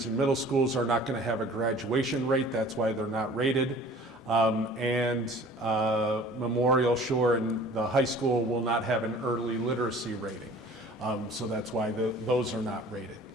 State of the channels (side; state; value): both; normal; correlation 0.48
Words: and middle schools are not going to have a graduation rate. That's why they're not rated. Memorial Shore and the high school will not have an early literacy rating. So that's why those are not rated.